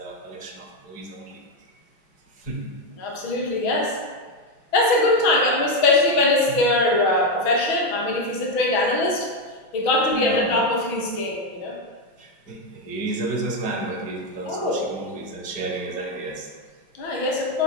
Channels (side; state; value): right; late; 6.2 ms